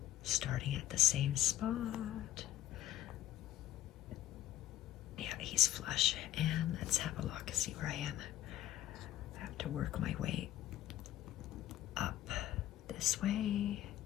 starting at the same spot. Yeah, he's flush. And let's have a look, see where I am. I have to work my way up this way.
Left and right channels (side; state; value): right; quieter; 13.4 dB